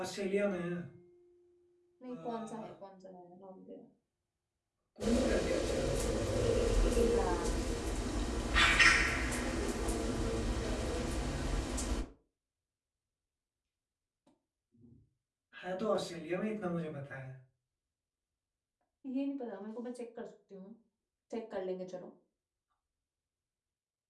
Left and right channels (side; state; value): both; identical; correlation 1.00